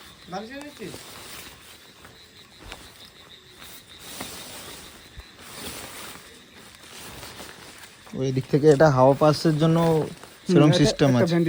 বালিশ এনেছিস? ওই দিক থেকে এটা হাওয়া পাসের জন্য সেরকম সিস্টেম আছে।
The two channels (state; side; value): identical; both; correlation 1.00